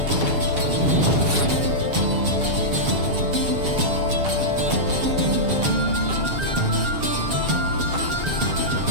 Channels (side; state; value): left; late; 7.1 ms